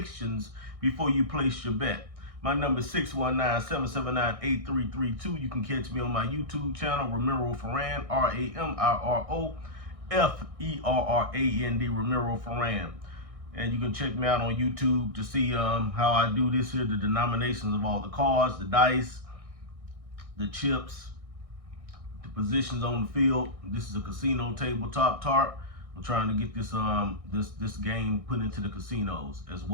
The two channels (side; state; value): left; late; 1.6 ms